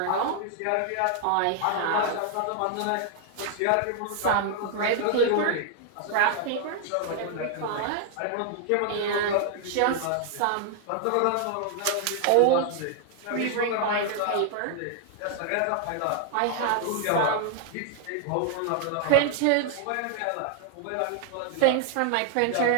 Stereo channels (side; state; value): both; different; correlation 0.00